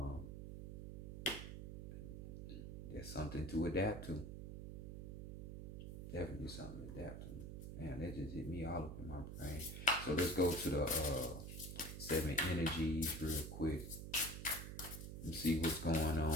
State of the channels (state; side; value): noise; right; hum, 7 dB below the sound